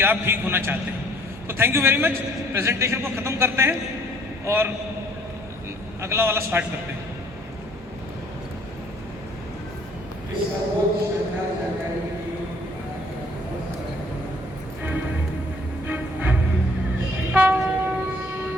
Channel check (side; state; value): both; normal; correlation 0.59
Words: आप ठीक होना चाहते हैं। तो thank you very much. Presentation को ख़त्म करते हैं और अगला वाला स्टार्ट करते हैं।